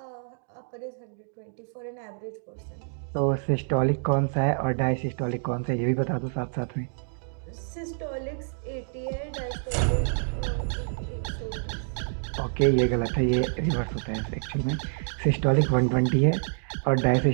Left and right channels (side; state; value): left; silent; digital silence